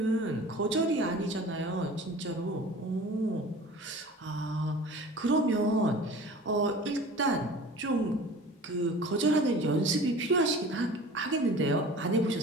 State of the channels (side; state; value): both; normal; correlation 0.41